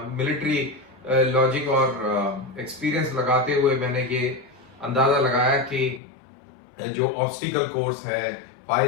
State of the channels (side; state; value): right; drops out; at 6.0 s